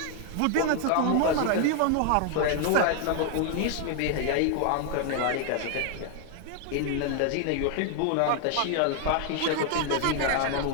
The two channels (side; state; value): both; different; correlation 0.00